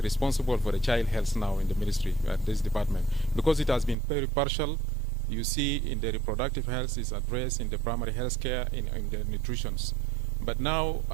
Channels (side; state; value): left; drops out; at 4.0 s